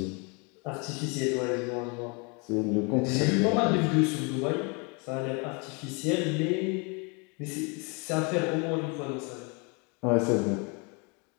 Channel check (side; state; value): right; quieter; 32.4 dB